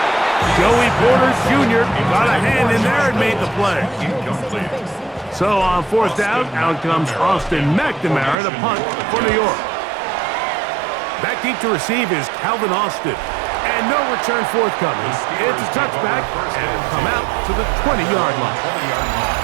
Joey Porter Jr. got a hand in there and made the play. Incomplete. So on 4th down, out comes Austin McNamara to punt for New York. Back deep to receive is Calvin Austin. And no return forthcoming. It's a touchback and it'll come out to the 20-yard line.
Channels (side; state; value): left; drops out; at 8.3 s